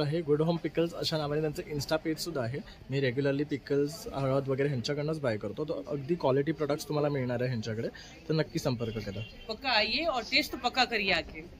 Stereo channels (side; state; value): both; identical; correlation 1.00